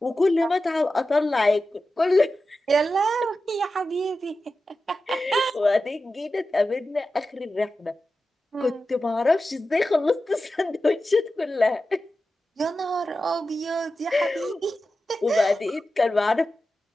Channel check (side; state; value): both; normal; correlation 0.92